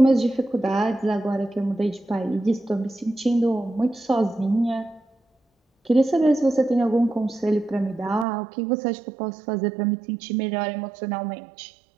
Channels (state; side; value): drops out; left; at 8.2 s